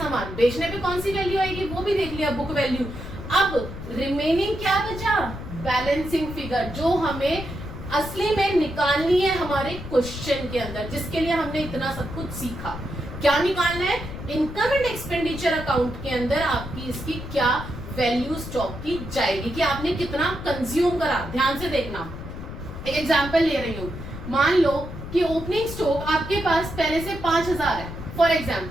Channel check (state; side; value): noise; left; rumble, 10 dB below the sound